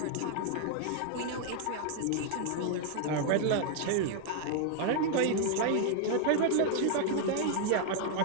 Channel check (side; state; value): both; different; correlation 0.00